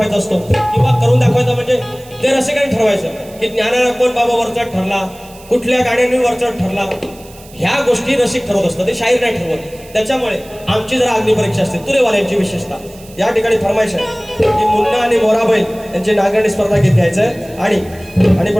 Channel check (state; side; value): noise; right; hiss, 22 dB below the sound